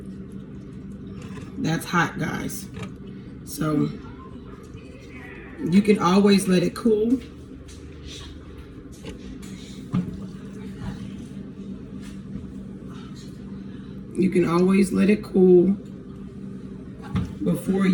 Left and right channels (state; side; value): identical; both; correlation 1.00